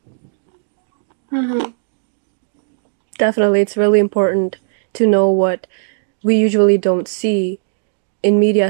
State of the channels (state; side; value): silent; left; digital silence